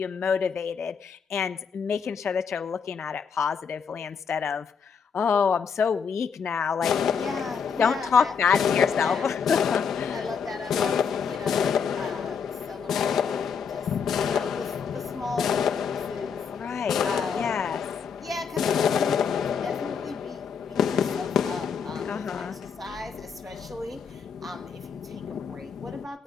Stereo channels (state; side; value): quieter; right; 6.4 dB